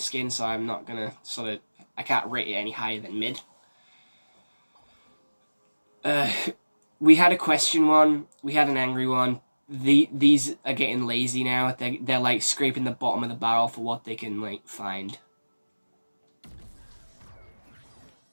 skin, so I'm not gonna I can't rate it any higher than mid. We had a question one. We had an angry one. These are getting lazy now. They're like scraping the bottom of the barrel for what they can find.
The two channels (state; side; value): inverted; both; correlation -1.00